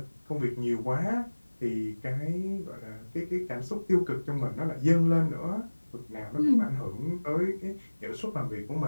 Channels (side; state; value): both; inverted; correlation -1.00